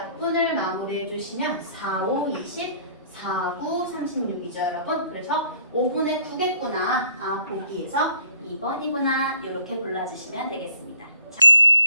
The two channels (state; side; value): inverted; both; correlation -0.61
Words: 마무리해 주시면 4, 5, 20, 4, 9, 36이죠, 여러분. 그래서 5분의 9겠구나. 보기에서 2번이구나. 이렇게 골라주시면 되겠습니다.